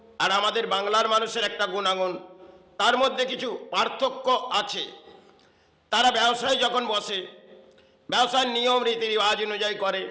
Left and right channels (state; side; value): identical; both; correlation 1.00